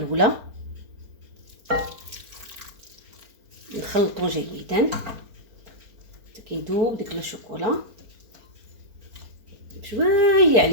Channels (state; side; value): late; left; 4.3 ms